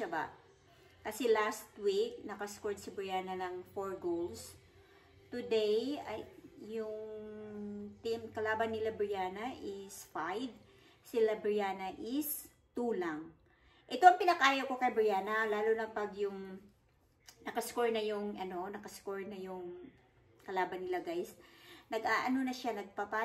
ba. Kasi last week, nakascored si Brianna ng 4 goals. Today, yung team kalaban nila Brianna is 5. Sila Brianna is 2 lang. Ito ang pinakayo ko kay Brianna, lalo na pag yung nakascore na yung kalaban nila, guys.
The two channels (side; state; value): both; identical; correlation 1.00